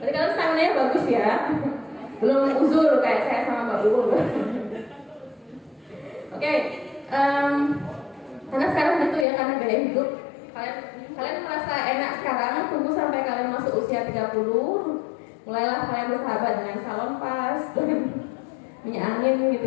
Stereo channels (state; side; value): drops out; right; at 9.2 s